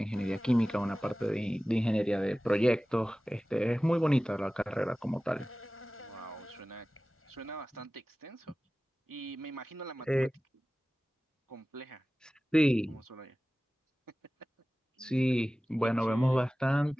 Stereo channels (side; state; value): both; normal; correlation 0.97